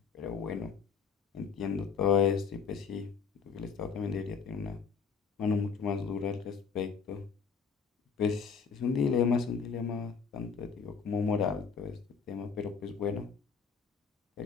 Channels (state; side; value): quieter; right; 6.1 dB